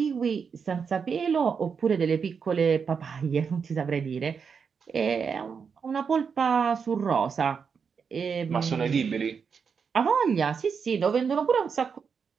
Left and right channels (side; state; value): left; quieter; 6.1 dB